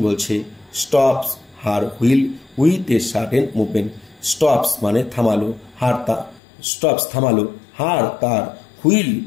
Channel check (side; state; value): right; drops out; at 6.4 s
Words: বলছে stops her wheel with a certain movement. Stops মানে থামালো, থামালো, হার তার, হুইল